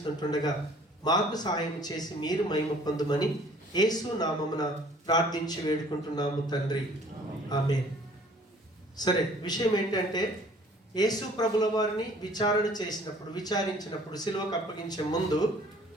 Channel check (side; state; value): both; normal; correlation 0.54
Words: మాకు సహాయం చేసి మీరు మహిమ పొందుమని యేసు నామమున ప్రార్థించి వేడుకుంటున్నాము తండ్రి, ఆమేన్. సరే, విషయం ఏంటంటే యేసు ప్రభుల వారిని విచారించినప్పుడు సిలువకు అప్పగించే ముందు